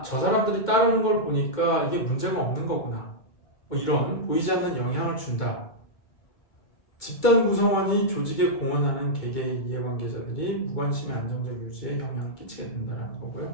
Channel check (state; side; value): late; right; 1.9 ms